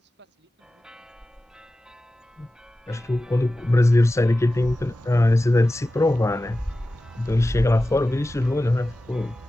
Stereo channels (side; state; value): both; normal; correlation 0.95